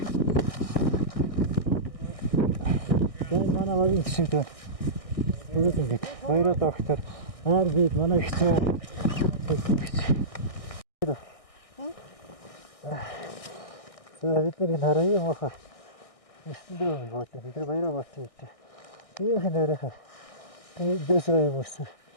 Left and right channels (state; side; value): late; right; 1.6 ms